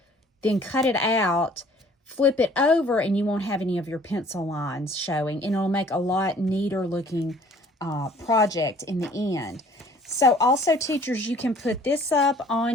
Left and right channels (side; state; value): both; normal; correlation 0.55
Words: then cut it out, flip it over, and you won't have any of your pencil lines showing, and it'll make a lot neater looking project in the end. So also, teachers, you can put this up